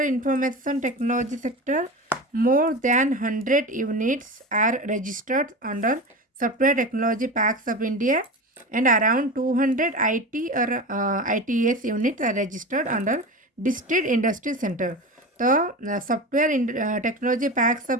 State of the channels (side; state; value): both; normal; correlation 0.27